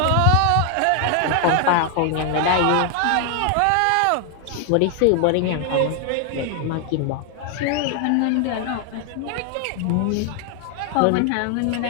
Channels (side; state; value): both; different; correlation 0.00